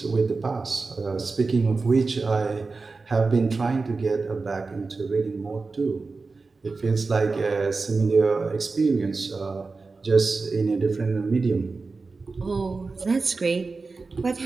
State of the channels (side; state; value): left; quieter; 4.0 dB